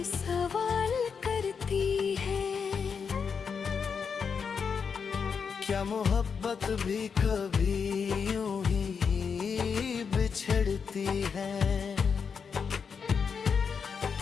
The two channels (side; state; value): right; quieter; 6.1 dB